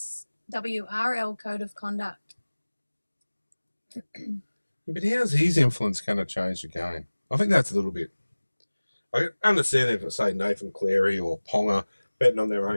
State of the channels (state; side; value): inverted; both; correlation -1.00